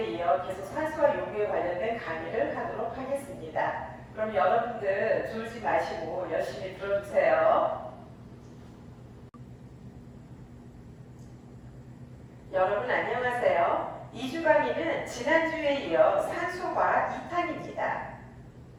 이어 계속 산소와 요구에 관련된 강의를 하도록 하겠습니다. 그럼 여러분들 졸지 마시고 열심히 들어주세요. 여러분 안녕하세요. 2주 강의는 지난주에 이어 산소과 2탄입니다.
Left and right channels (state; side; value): identical; both; correlation 1.00